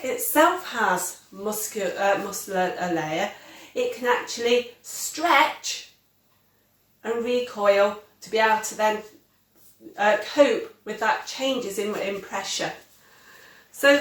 itself has muscular layer, it can actually stretch and recoil to be able to then cope with that changes in pressure. So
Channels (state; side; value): identical; both; correlation 1.00